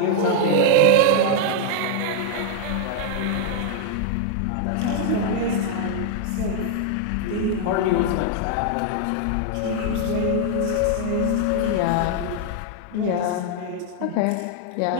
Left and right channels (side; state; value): both; different; correlation 0.00